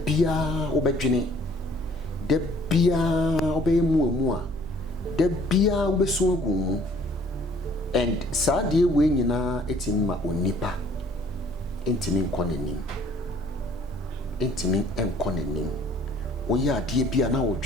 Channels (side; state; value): both; normal; correlation 0.57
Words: obedjene, the bia obey mua, da bia obeso agu and saa de we nyina etimi ma onipa entimi nkɔ nanim entimi enkɔ nanim oyi ade bia na